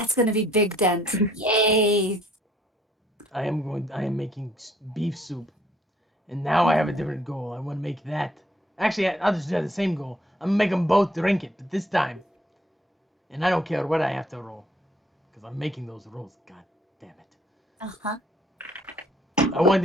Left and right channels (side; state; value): both; normal; correlation 0.63